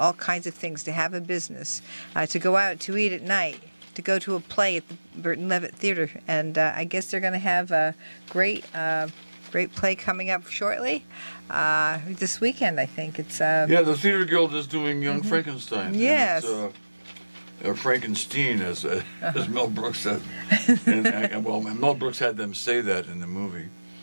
kinds of things, to have a business, to go out to eat at night, to go to a play at the Burton Levitt Theater, and I guess they're going to have a great play coming up shortly this weekend. I think it's the Theater Guild is doing Young Frankenstein. Yes. Frankenstein, as Mel Brooks said, and Mel Brooks had them say that in the movie.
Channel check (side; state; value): both; inverted; correlation -1.00